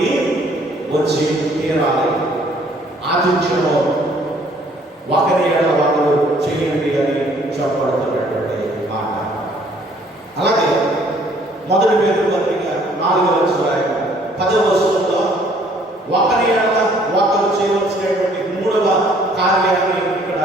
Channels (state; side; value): normal; both; correlation 0.60